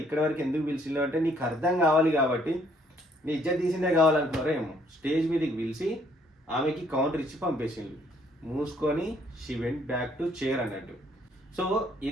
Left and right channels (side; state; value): both; normal; correlation 0.65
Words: ఇక్కడ వరకు ఎందుకు పిలిచిందో అంటే నీకు అర్థం కావాలి కాబట్టి, నీ ఇజ్జత్ తీసిందే కావాలనుకున్నారో ఏమో. స్టేజ్ మీదకి పిలిచి ఆమెకి కౌంటర్ ఇచ్చి పంపేసింది. మూసుకొని she went back to chair అన్నట్టు. సో